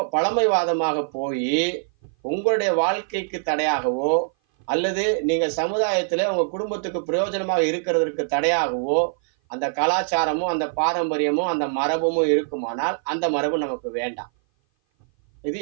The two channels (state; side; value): silent; left; 57 dB below the other